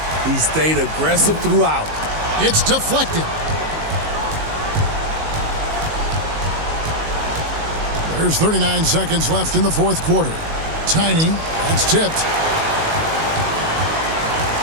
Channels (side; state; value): left; late; 19 ms